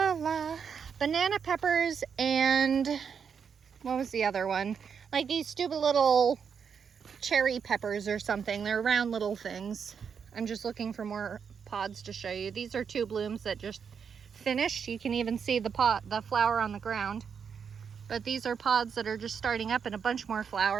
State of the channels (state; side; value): quieter; left; 6.8 dB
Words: banana peppers and what was the other one? Like these stupid little cherry peppers or something. They're round little things. I'm just looking for more pods to show you. These are 2 blooms that just finished. You can even see the flower on the ground. But these are pods that are just starting up and a bunch more